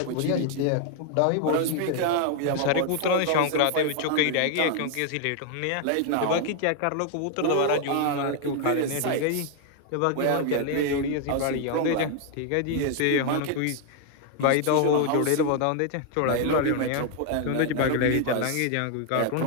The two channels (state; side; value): different; both; correlation 0.00